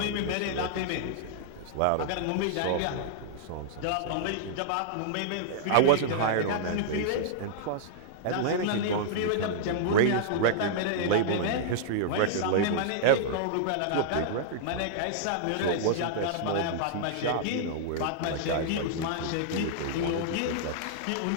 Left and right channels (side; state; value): both; different; correlation -0.02